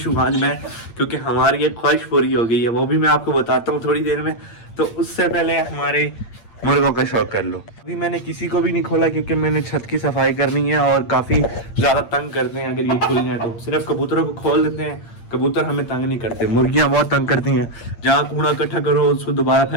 हूँ आज मैं, क्योंकि हमारी एक ख्वाहिश पूरी हो गई है, वो भी मैं आपको बताता हूँ थोड़ी देर में। तो उससे पहले हमारे मुर्गों का शौक कर लो। अभी मैंने किसी को भी नहीं खोला क्योंकि मैंने छत की सफाई करनी है और काफ़ी ज़्यादा तंग करते हैं अगर ये खुल जाए तो। सिर्फ कबूतरों को खोल देते हैं, कबूतर हमें तंग नहीं करते, मुर्गियां बहुत तंग करती हैं। जहाँ कूड़ा इकट्ठा करो उसको दोबारा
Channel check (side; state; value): right; late; 8.7 ms